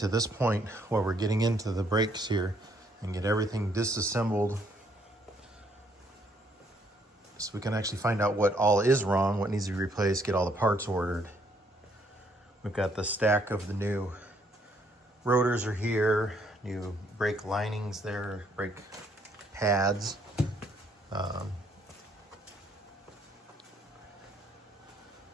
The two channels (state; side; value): normal; both; correlation 0.69